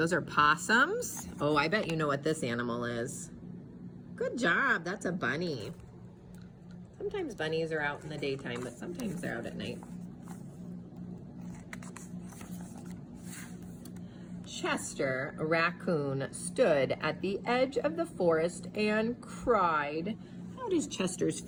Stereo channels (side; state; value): both; identical; correlation 1.00